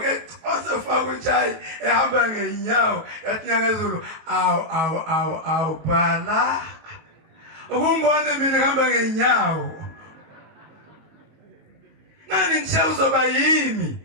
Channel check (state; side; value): late; left; 19 ms